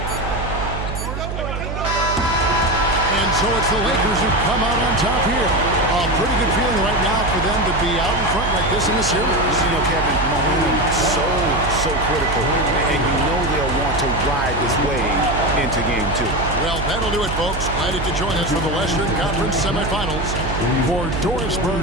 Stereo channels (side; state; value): right; noise; hum, 5 dB below the sound